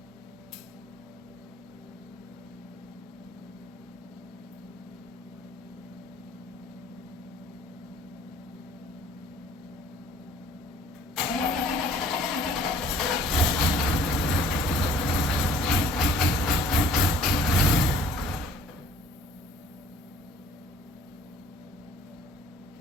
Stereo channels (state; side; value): normal; both; correlation 0.53